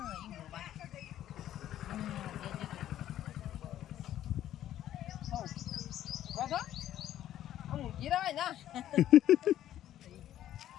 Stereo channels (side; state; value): right; quieter; 12.1 dB